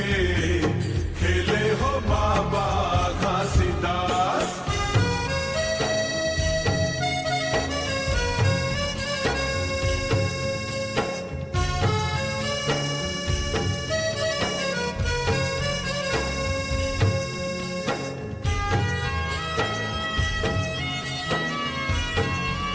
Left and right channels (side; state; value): both; identical; correlation 1.00